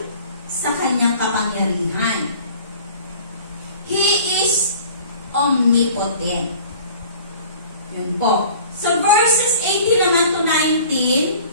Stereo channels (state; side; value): inverted; both; correlation -0.47